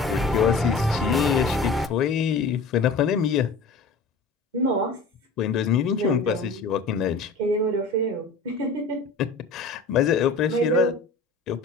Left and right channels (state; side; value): quieter; right; 4.0 dB